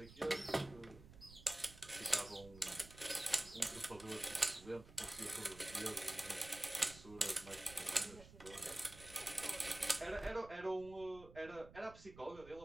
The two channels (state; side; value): noise; right; rumble, 18 dB below the sound